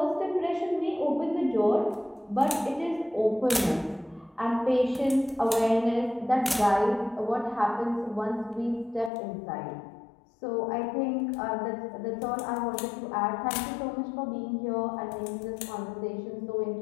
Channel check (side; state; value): right; drops out; at 9.1 s